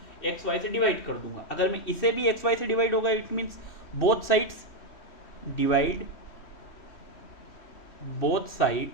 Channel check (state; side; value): late; right; 3.1 ms